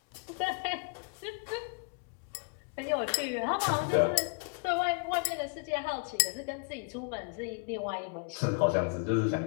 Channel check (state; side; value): quieter; right; 36.4 dB